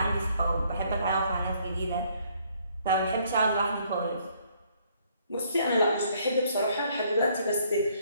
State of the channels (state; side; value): inverted; both; correlation -0.66